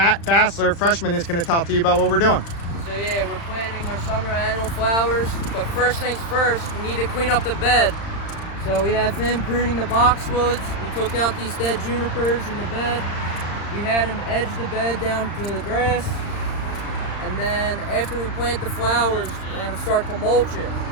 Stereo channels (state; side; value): late; right; 35 ms